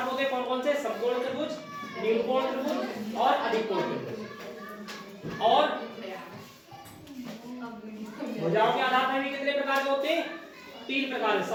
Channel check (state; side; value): identical; both; correlation 1.00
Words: होते हैं, कौन कौन से, समकोण त्रिभुज, न्यून कोण त्रिभुज और अधिक कोण त्रिभुज। और भुजाओं के आधार पर भी कितने प्रकार के होते हैं, तीन प्रकार,